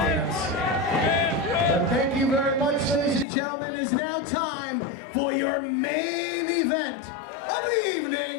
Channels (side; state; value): right; drops out; at 3.2 s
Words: Thank you very much, ladies and gentlemen. It's now time for your main event of the